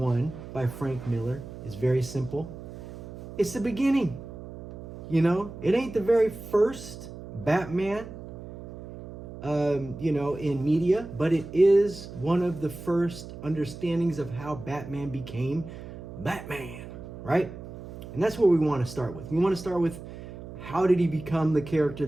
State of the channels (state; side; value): noise; right; hum, 13 dB below the sound